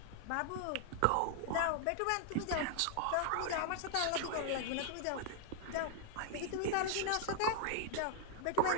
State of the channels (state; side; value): different; both; correlation 0.00